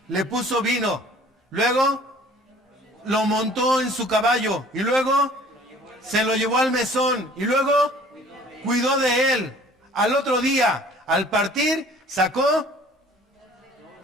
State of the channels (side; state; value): both; normal; correlation 0.51